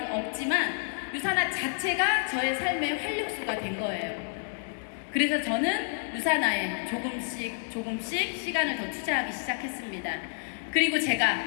없지만 유산화 자체가 저의 삶의 활력소가 된 거예요. 그래서 저는 유산화에 조금씩 시간을 더 투자하기 시작했습니다. 그리고 제가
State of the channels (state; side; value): silent; right; digital silence